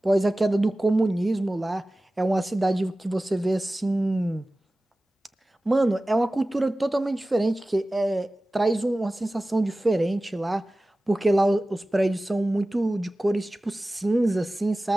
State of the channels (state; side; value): normal; both; correlation 0.97